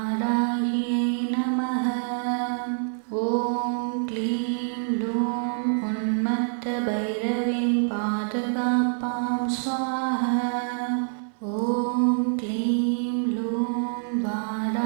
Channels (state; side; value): silent; left; digital silence